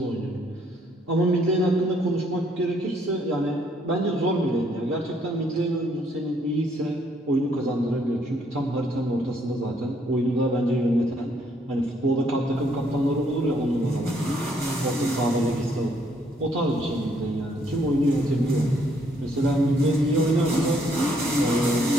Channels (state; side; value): normal; both; correlation 0.69